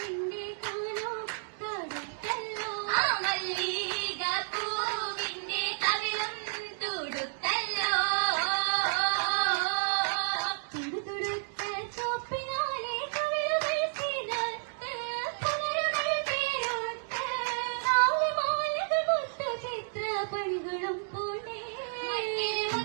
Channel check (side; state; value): left; silent; digital silence